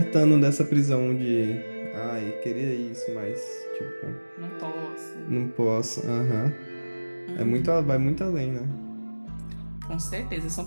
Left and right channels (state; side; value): inverted; both; correlation -1.00